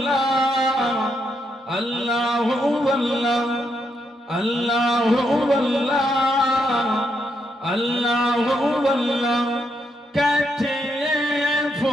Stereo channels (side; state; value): both; normal; correlation 0.78